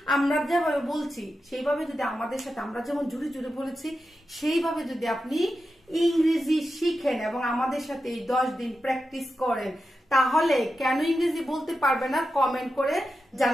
আমরা যেভাবে বলছি সেইভাবে যদি আমাদের সাথে, আমরা যেমন জুড়ে জুড়ে বলেছি সেইভাবে যদি আপনি ইংরেজি শিখেন এবং আমাদের সাথে এই 10 দিন প্র্যাকটিস করেন, তাহলে কেন ইংরেজি বলতে পারবে না কমেন্ট করে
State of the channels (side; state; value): both; normal; correlation 0.90